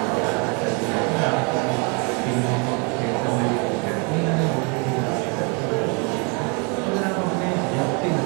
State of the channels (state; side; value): quieter; left; 33.7 dB